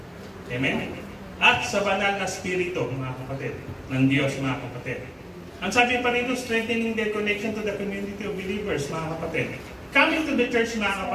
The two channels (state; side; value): identical; both; correlation 1.00